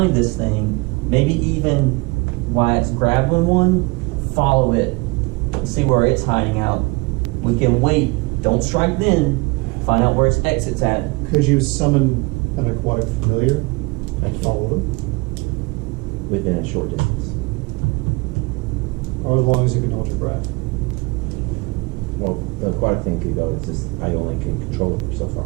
this thing, maybe even while it's grabbing one, follow it, and see where it's hiding out. We can wait, don't strike then, find out where its exit's at. Could you summon an aquatic familiar I and can. follow them? Within a short distance. Or as long as you can hold your breath? Well, the aquatic thing could go. It's just I only can control it for so far.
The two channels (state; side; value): quieter; left; 26.6 dB